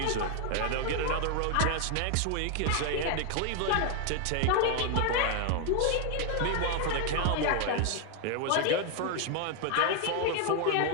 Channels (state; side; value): different; both; correlation 0.00